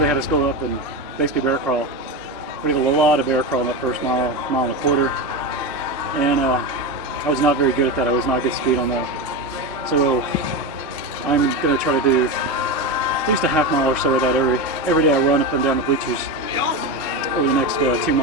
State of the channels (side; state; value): both; normal; correlation 0.18